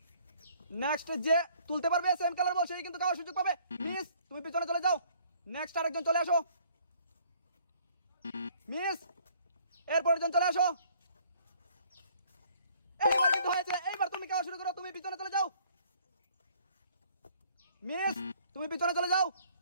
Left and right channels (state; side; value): inverted; both; correlation -0.59